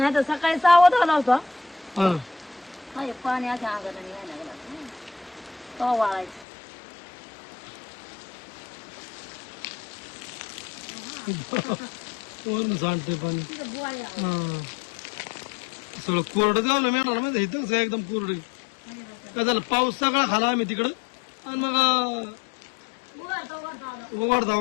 तर सकाळी 6 वाजता आला होता. हा पाणी अशा अंगाला यायला लागला तो वाळायचं. वरून सांडतंय पाणी. तिथं बुवाळी आहे. हा सगळं कोरडं गावलं मेळणार माहिती इथं सगळं एकदम कोरडं. काय झालं पाऊस सगळा खाला आम्ही तिकडं आणि मग उघडता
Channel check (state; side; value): drops out; right; at 6.5 s